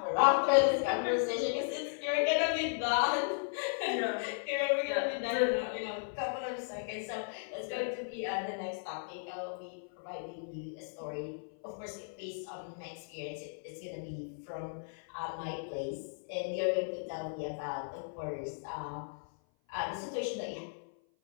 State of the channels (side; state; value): right; silent; 54 dB below the other